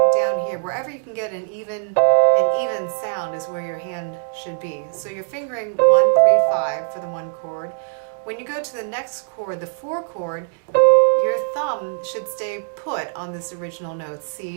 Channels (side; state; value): left; silent; digital silence